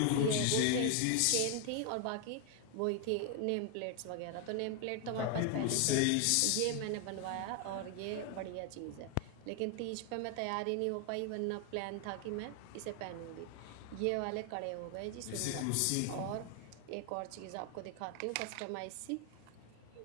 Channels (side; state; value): both; different; correlation 0.00